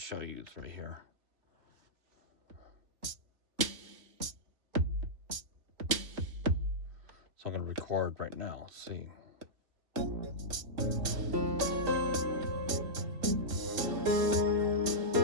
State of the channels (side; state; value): left; late; 3.4 ms